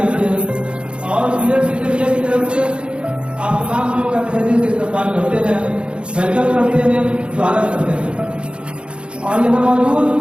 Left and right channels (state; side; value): late; left; 0.056 ms